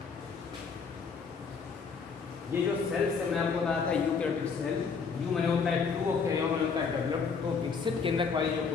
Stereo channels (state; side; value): quieter; right; 5.4 dB